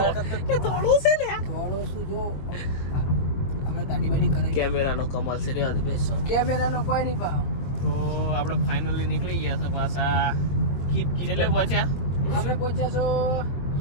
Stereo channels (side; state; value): right; late; 22 ms